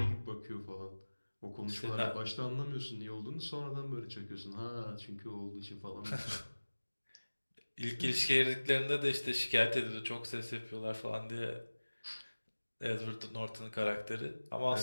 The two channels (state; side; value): inverted; both; correlation -1.00